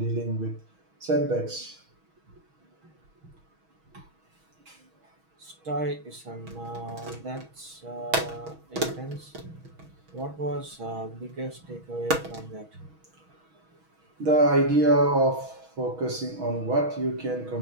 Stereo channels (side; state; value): left; late; 6.3 ms